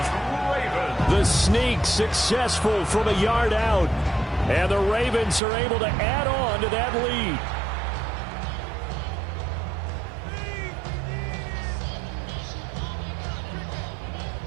The sneak successful from a yard out. And the Ravens are able to add on to that lead.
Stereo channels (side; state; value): left; drops out; at 5.4 s